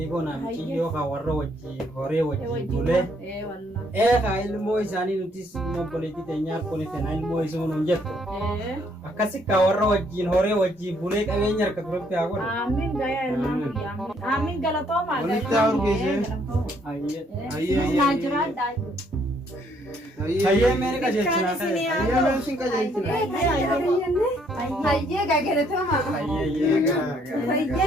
goona michiyyoo haa warra wajjii horee wajjii bulee. Haa ilmoo isaanii nutis obboleettii teenyaa harkoon ittiin ilmoo isuu nuun jettu. Akkasi kaa warra wajjiin horee wajjii bulee qabeenya harka turatti haa godhu. Amiin gaayaa ilmaan guyyaa. Amiin galatoomaa Hayyee meeni qajeelchinaa ta'e. Hayyee meeshin qajeelchinaa. Hayyee galatoomaa.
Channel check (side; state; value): both; normal; correlation 0.68